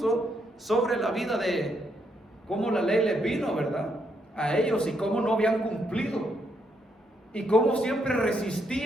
sobre la vida de cómo la ley les vino, ¿verdad? a ellos y cómo no habían cumplido y cómo siempre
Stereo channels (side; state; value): both; normal; correlation 0.76